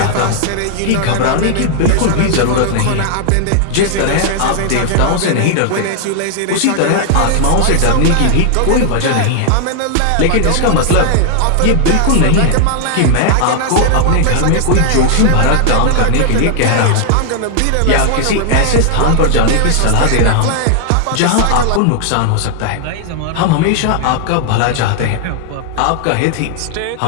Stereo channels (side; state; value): both; different; correlation 0.00